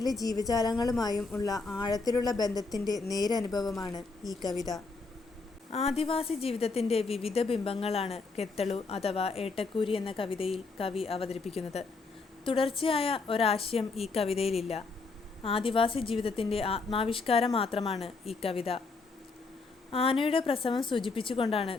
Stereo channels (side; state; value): right; quieter; 4.1 dB